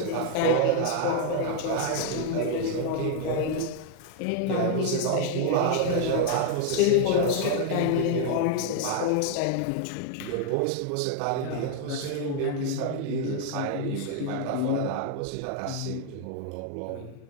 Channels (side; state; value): both; different; correlation 0.00